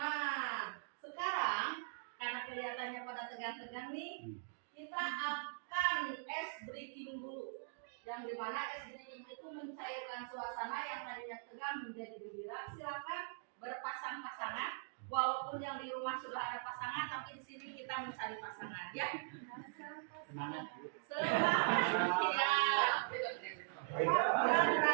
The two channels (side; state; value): left; silent; digital silence